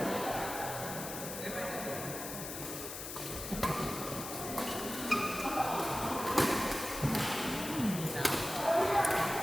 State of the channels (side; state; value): left; noise; hiss, 7 dB below the sound